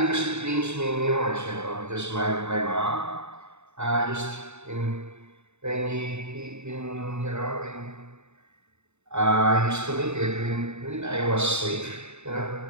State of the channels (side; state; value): left; late; 0.82 ms